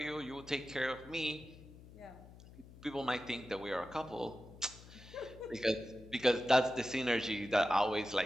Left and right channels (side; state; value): left; noise; hum, 19 dB below the sound